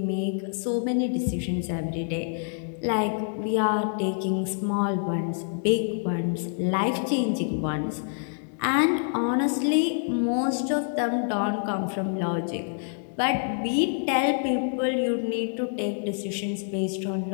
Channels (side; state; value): right; silent; digital silence